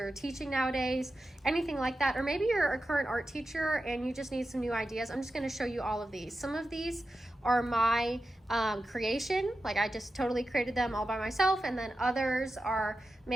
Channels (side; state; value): both; normal; correlation 0.91